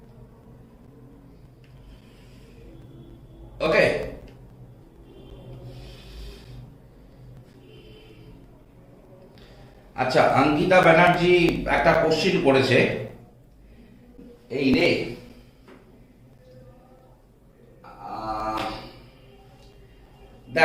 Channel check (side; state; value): both; identical; correlation 1.00